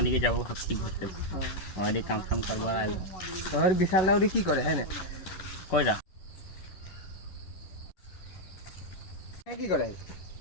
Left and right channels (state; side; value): late; right; 10 ms